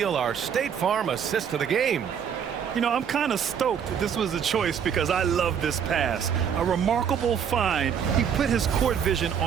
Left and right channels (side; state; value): left; quieter; 7.9 dB